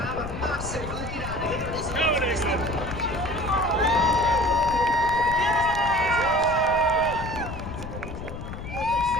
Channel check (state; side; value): noise; left; rumble, 9 dB below the sound